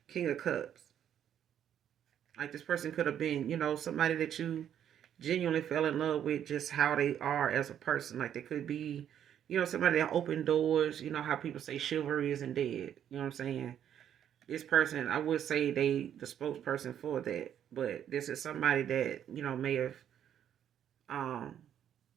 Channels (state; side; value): quieter; left; 9.7 dB